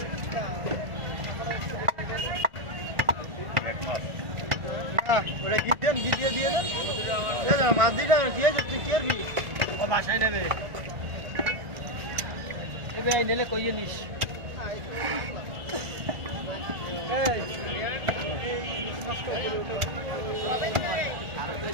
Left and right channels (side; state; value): left; late; 1.4 ms